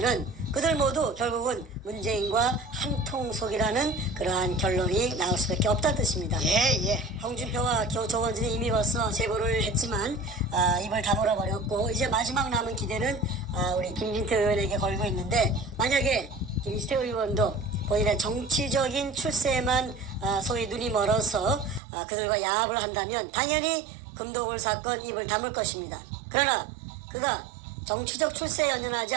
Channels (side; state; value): left; drops out; at 21.8 s